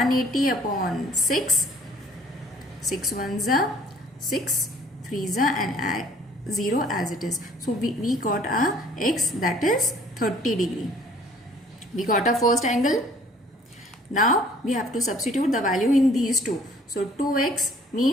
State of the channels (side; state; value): both; normal; correlation 0.56